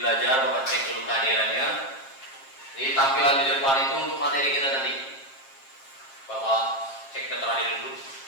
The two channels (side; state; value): right; late; 7.5 ms